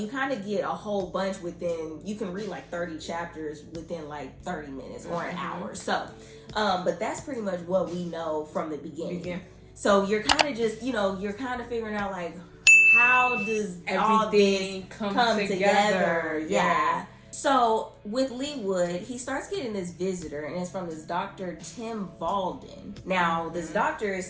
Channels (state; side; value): identical; both; correlation 1.00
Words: kind of get a whole bunch within, you can read like 30 chapters within like 30 minutes or an hour. So but that's pretty much what we know from the beginning. So you're kind of just, you know, you're kind of figuring out like, how does all this come together? Yeah. So with Leewood, he starts getting this visitor, and it's from this Dr. Tim Valden. Now, this doctor is